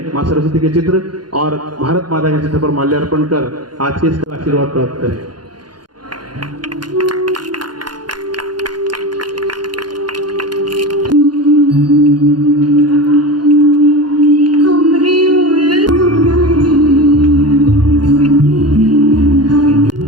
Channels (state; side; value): late; left; 0.70 ms